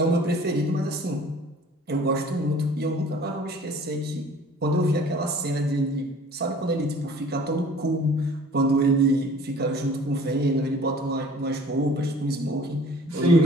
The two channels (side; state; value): both; normal; correlation 0.49